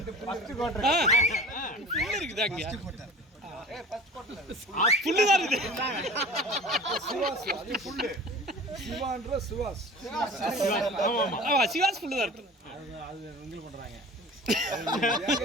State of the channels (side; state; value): both; normal; correlation 0.40